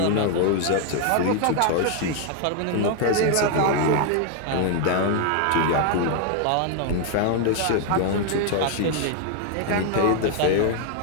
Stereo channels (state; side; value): different; both; correlation 0.00